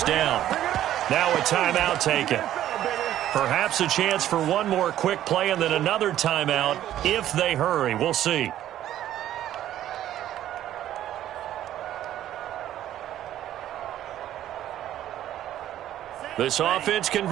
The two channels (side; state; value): left; quieter; 12.3 dB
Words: down. Now a timeout taken. Perhaps a chance for one more quick play and then another timeout if they hurry. We'll see. This offense